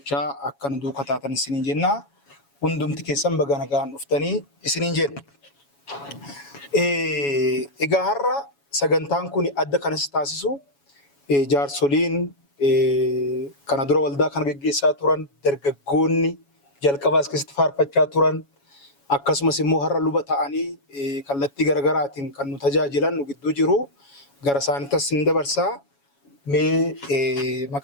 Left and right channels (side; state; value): right; late; 7.2 ms